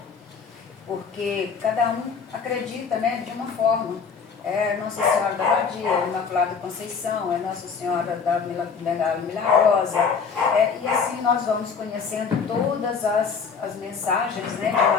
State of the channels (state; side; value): quieter; right; 5.8 dB